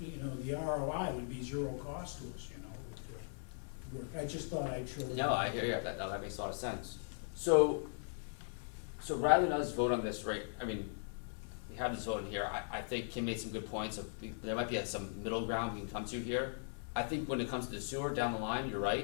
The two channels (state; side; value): silent; right; 52 dB below the other